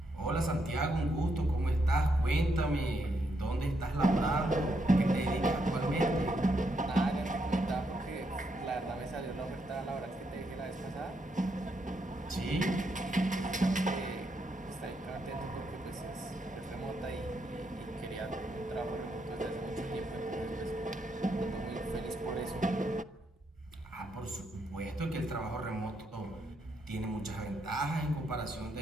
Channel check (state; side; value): normal; both; correlation 0.78